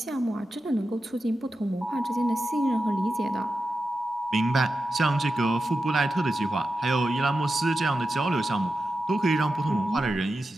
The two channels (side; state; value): both; normal; correlation 0.91